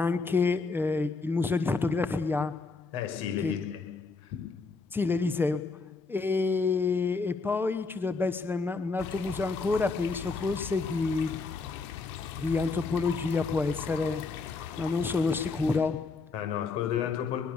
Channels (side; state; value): right; quieter; 4.2 dB